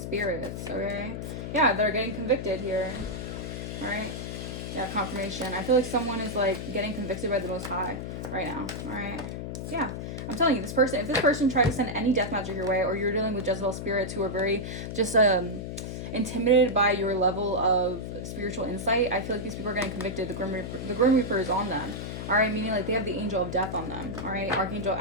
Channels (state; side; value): noise; left; hum, 6 dB below the sound